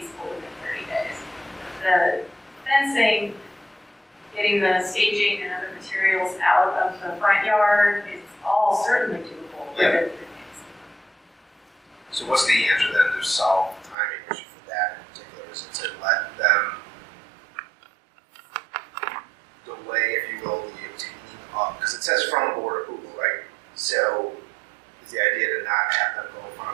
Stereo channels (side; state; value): left; drops out; at 14.0 s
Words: within 30 days. The fencing, getting the staging and other materials out of the front yard is all certainly doable within 30 days. So what's the answer then to solve the timing issue for that in particular? Is it to let them delay, if you will, the obtaining of, because it says from board approval, right? So is the idea to not have them go in